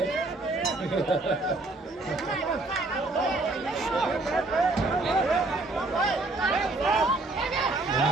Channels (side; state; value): left; quieter; 3.1 dB